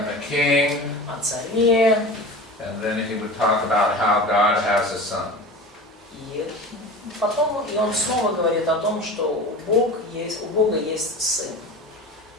the king. о царе. And then he would talk about how God has a son. И потом он снова говорит о том, что у Бога есть сын.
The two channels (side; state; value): both; normal; correlation 0.33